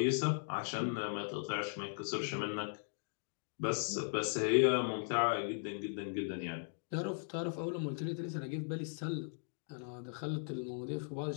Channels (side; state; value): right; silent; digital silence